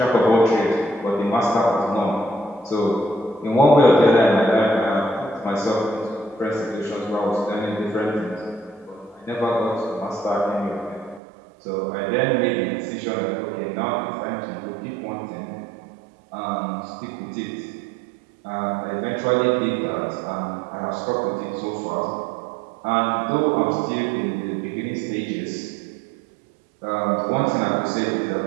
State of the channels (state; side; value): drops out; left; at 11.2 s